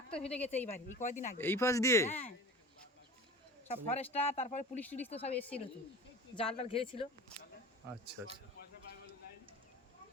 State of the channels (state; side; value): normal; both; correlation 0.37